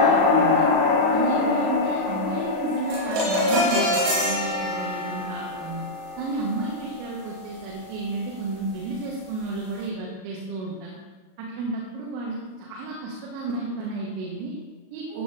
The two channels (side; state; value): left; late; 37 ms